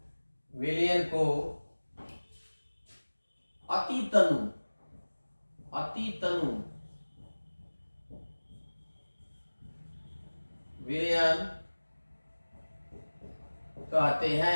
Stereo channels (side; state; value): both; inverted; correlation -1.00